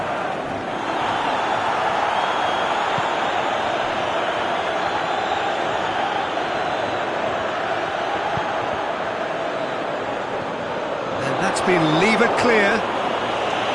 And that's been levered clear.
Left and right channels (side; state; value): both; identical; correlation 1.00